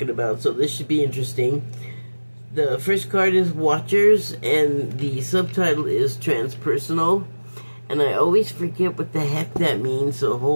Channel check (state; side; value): inverted; both; correlation -1.00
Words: about, so this should be interesting. The first card is Watchers, and the subtitle is Transpersonal. And I always forget what the heck that means, so